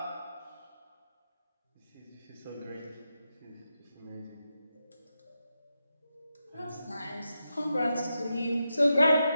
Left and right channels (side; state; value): both; inverted; correlation -0.87